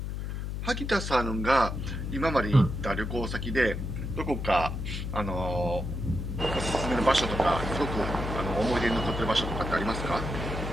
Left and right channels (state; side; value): noise; left; hum, 4 dB below the sound